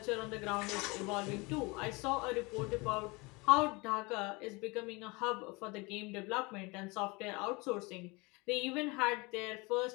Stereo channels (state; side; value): quieter; right; 26.1 dB